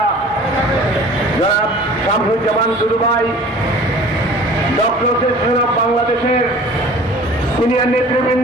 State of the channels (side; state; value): both; normal; correlation 0.46